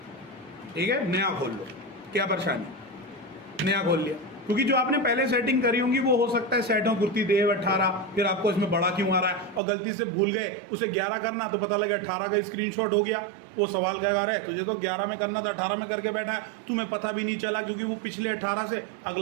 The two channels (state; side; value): drops out; left; at 9.6 s